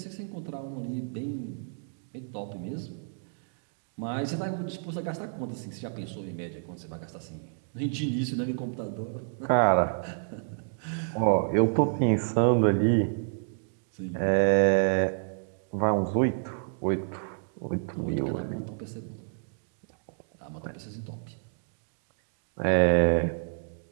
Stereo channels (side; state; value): left; silent; digital silence